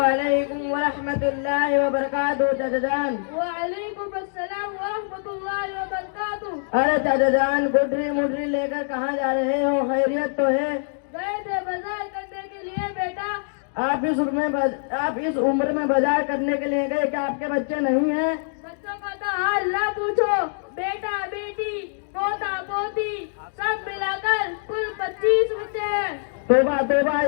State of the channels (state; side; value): silent; right; digital silence